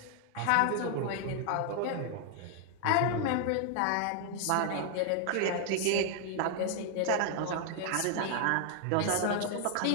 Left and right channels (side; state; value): both; different; correlation 0.00